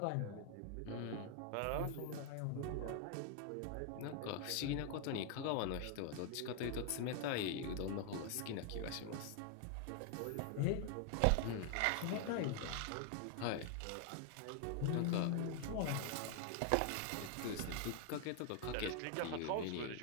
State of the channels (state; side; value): different; both; correlation 0.00